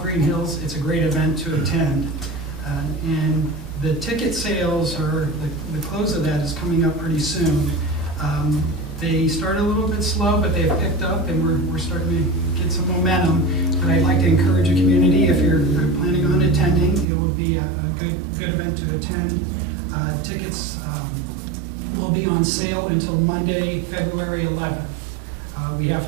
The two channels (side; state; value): left; drops out; at 17.1 s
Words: Greenhills, it's a great event to attend. And the ticket sales, or the close of that is coming up pretty soon. They started a little bit slow, but they've picked up, and we're starting to get some momentum. But I'd like to encourage the community, if you're planning on attending, it will be a good event to attend. Tickets will be on sale until Monday, February 11th. We